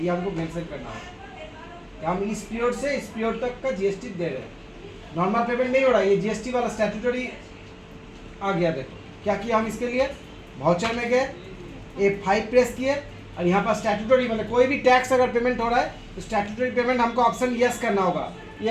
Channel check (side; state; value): both; identical; correlation 1.00